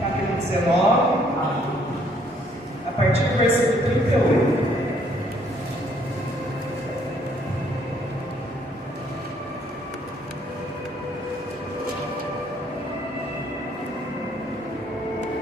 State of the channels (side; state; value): both; normal; correlation 0.65